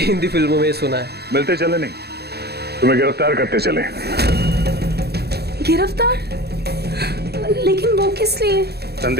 फिल्मों में सुना है। मिलते चले नहीं, तुम्हें गिरफ्तार करते चले। गिरफ्तार? लेकिन वो किस लिए?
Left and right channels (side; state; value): left; late; 0.47 ms